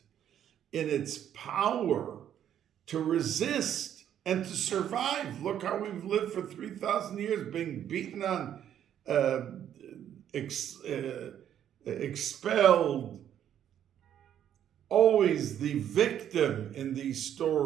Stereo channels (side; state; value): left; quieter; 10.1 dB